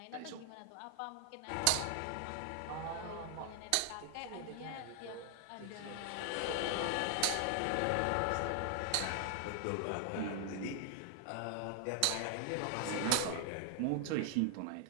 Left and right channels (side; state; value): both; different; correlation 0.00